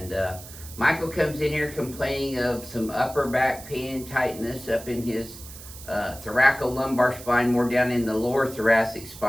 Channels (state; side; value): noise; right; hiss, 15 dB below the sound